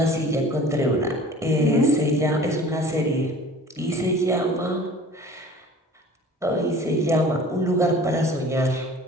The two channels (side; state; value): both; normal; correlation 0.45